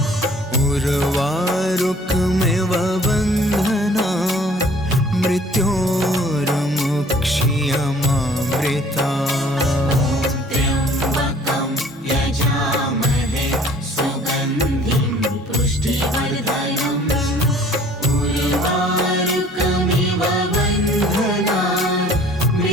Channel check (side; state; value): both; normal; correlation 0.53